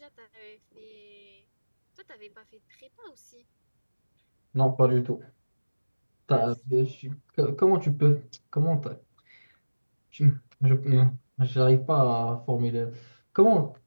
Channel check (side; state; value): both; inverted; correlation -1.00